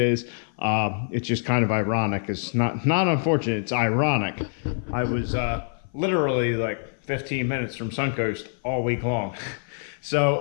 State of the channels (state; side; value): silent; right; 57 dB below the other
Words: It's just kind of ironic. It's not unfortunate, it's ironic. I was literally like 15 minutes from Suncoast all week long. So